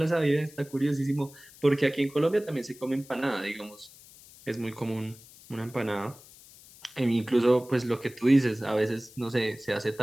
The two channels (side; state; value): left; noise; hiss, 22 dB below the sound